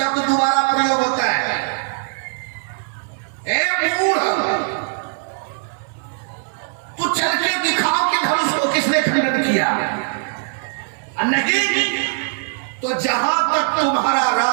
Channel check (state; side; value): silent; left; digital silence